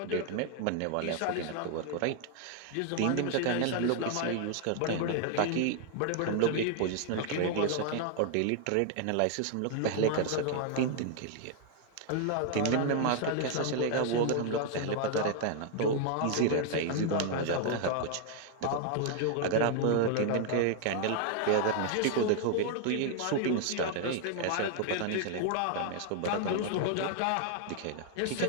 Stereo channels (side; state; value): both; different; correlation 0.00